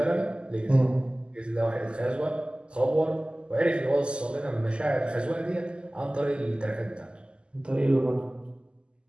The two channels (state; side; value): late; left; 0.050 ms